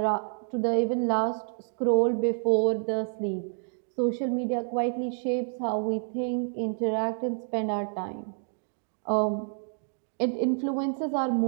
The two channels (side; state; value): left; silent; digital silence